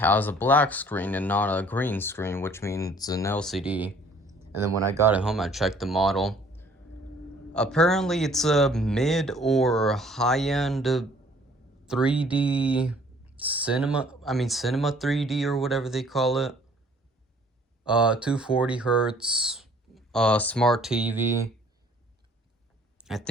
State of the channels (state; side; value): normal; both; correlation 0.57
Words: a black screen and not a green screen, which means an LCD. And then when I got it home, I checked the model. Apparently, it's a mid or high-end 3D cinema 3D or whatever they call it. 240 hertz, smart TV. I